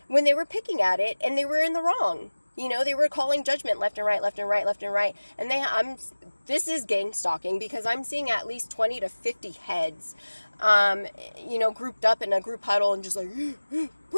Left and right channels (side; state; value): both; inverted; correlation -1.00